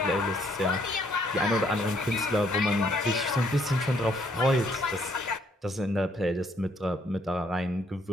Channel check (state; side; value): normal; both; correlation 0.67